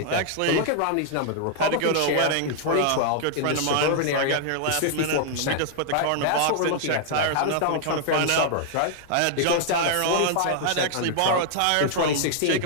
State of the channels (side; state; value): both; different; correlation -0.01